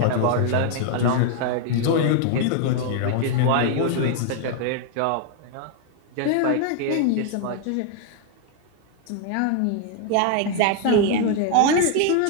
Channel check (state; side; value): different; both; correlation 0.00